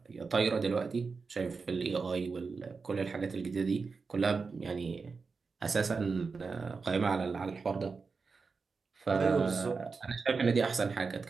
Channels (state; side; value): quieter; left; 4.7 dB